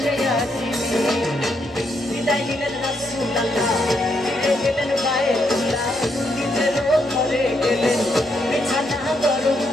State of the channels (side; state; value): both; normal; correlation 0.77